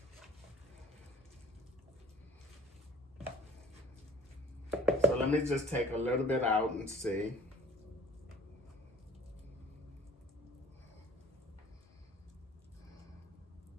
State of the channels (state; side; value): normal; both; correlation 0.47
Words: So let me just take a little bit out and see.